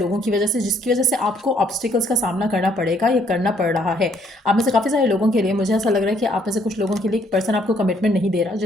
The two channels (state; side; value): normal; both; correlation 0.67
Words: की वजह से, जिसकी वजह से आपको ऑब्स्टिकल्स का सामना करना पड़ेगा या करना पड़ रहा है। आप में से काफ़ी सारे लोगों के लिए मुझे ऐसा लग रहा है कि आप में से कुछ लोगों के लिए एक पर्सन आपको कमिटमेंट नहीं दे रहा,